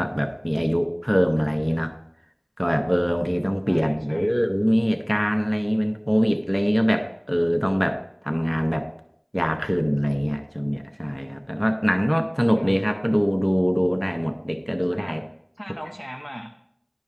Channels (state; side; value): identical; both; correlation 1.00